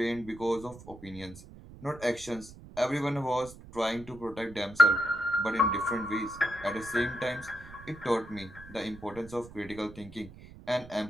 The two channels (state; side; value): noise; right; rumble, 17 dB below the sound